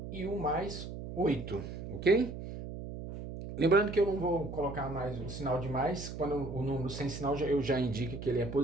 e o mais 8, ok? Lembrando que eu não vou colocar mais o sinal de mais, quando o número sem sinal eu já indico que ele é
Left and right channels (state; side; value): noise; right; hum, 8 dB below the sound